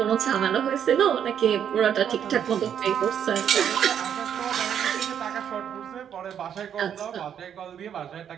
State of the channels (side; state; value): left; quieter; 8.8 dB